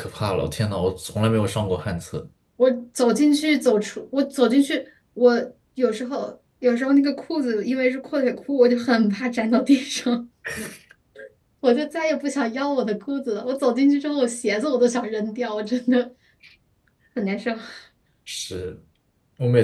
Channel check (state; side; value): identical; both; correlation 1.00